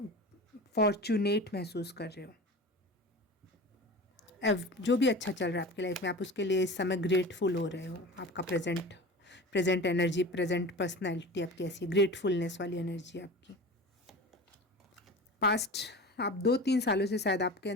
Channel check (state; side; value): normal; both; correlation 0.34